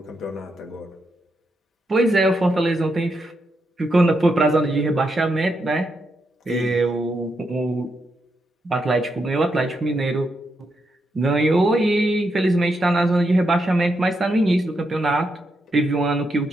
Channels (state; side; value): normal; both; correlation 0.82